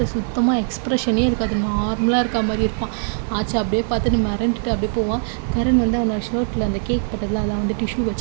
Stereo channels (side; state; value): left; silent; 65 dB below the other